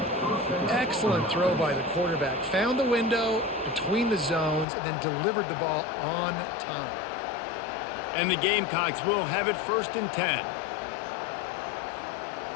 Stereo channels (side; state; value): right; drops out; at 4.7 s